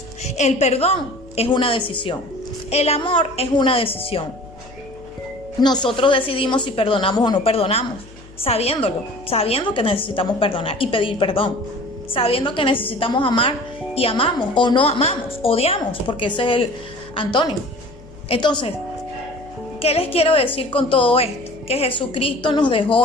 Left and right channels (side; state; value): left; noise; hum, 21 dB below the sound